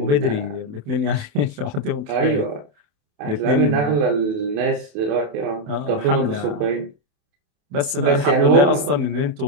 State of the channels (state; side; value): late; left; 28 ms